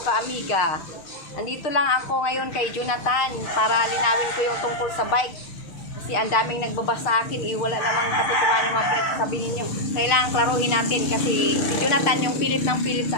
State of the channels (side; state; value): right; late; 6.5 ms